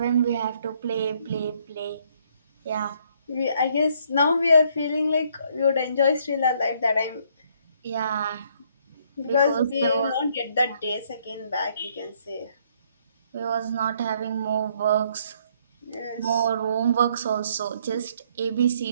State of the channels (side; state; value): both; inverted; correlation -0.67